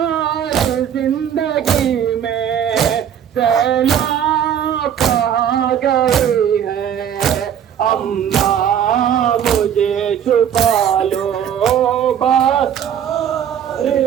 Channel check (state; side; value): quieter; left; 9.2 dB